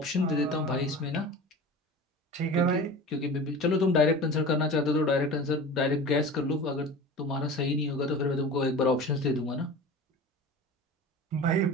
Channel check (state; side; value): normal; both; correlation 0.35